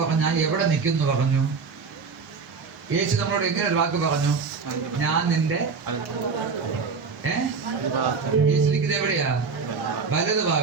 ഞാൻ എവിടെ നിൽക്കുന്നു പറഞ്ഞു. യേശു നമ്മളോട് എങ്ങനെ ഒരു വാക്ക് പറഞ്ഞു? ഞാൻ നിന്റെ യേശു നിൽക്കുന്നത് എവിടെയാ? വലത്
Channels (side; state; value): left; quieter; 5.1 dB